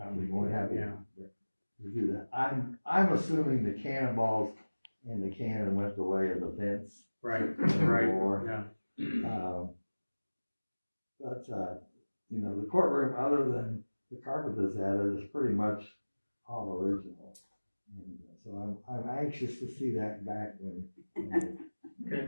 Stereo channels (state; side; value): inverted; both; correlation -1.00